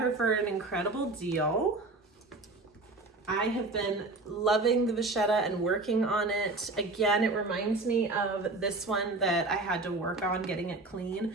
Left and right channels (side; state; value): left; quieter; 3.2 dB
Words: for an incredible deal. I have been loving the vachetta and working on it. Again, it reminds me of this one that I had to work on getting it